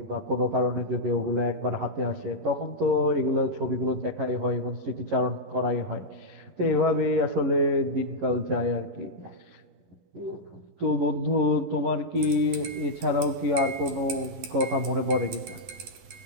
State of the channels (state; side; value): late; left; 12 ms